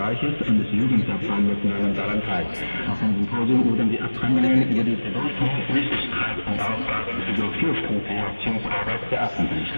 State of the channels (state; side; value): inverted; both; correlation -1.00